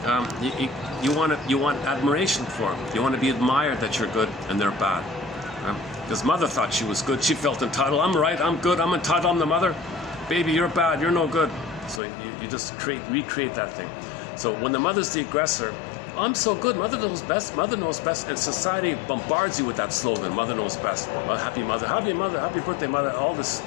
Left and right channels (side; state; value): right; drops out; at 12.0 s